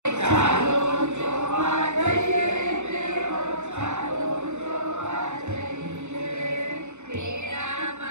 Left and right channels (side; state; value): left; late; 0.83 ms